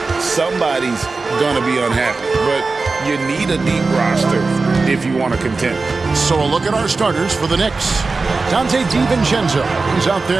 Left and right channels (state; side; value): quieter; left; 3.9 dB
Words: somebody's going to be unhappy. But you need a deep roster if you want to contend. So a look at our starters for the Knicks. Dante DiVincenzo. He's out